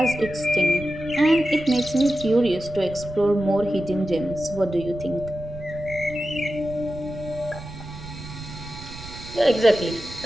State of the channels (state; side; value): noise; right; rumble, 14 dB below the sound